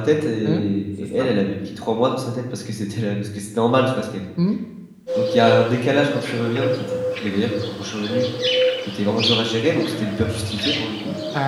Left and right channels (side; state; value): both; identical; correlation 1.00